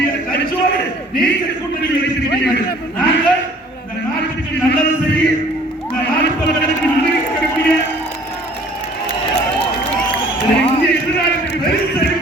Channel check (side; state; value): both; normal; correlation 0.54